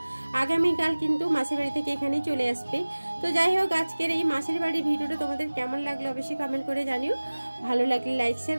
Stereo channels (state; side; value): inverted; both; correlation -1.00